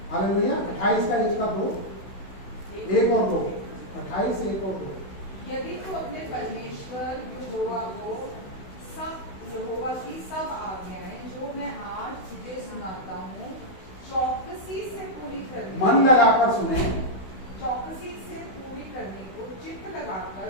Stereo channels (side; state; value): right; late; 16 ms